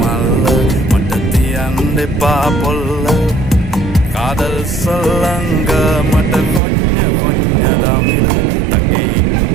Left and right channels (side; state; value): left; drops out; at 6.6 s